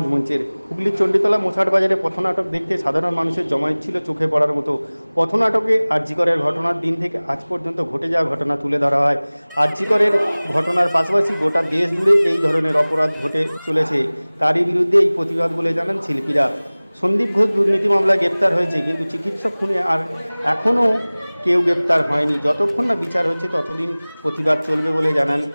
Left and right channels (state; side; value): inverted; both; correlation -1.00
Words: মঞ্চের। হুগলির চণ্ডীতলা মোছাট বাজারে পথনাটক দেখতে সাধারণ মানুষের জমায়েত ছিল চোখে পড়ার মতো। পথনাটকে আরজিকরের ঘটনার দিন থেকে আজ পর্যন্ত ঘটে যাওয়া ঘটনা তুলে ধরা হয়। আরজিকরের ঘটনার পাশাপাশি গোটা দেশ জুড়ে এই ধরনের অপরাধ ঘটে চলেছে, তারই বিরুদ্ধে এই প্রতিবাদ বলে জানান শিল্পীরা। সন্দীপ ঘোষ দুর্নীতি মামলায় গ্রেপ্তার হয়েছে, কিন্তু চিকিৎসক খুনে আর এখনও কেউ গ্রেপ্তার হয়নি। যতক্ষণ না বিচার হচ্ছে ততদিন প্রতিবাদ চলবে বলে জানান